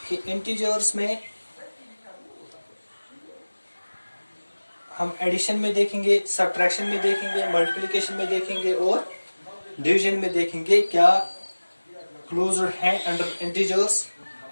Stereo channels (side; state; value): both; inverted; correlation -1.00